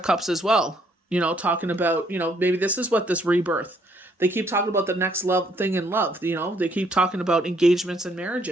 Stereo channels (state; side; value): normal; both; correlation 0.68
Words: Cups as well. Talking about, maybe this is what this rebirth. They keep talking about the next love thing in love. They keep talking about engagements and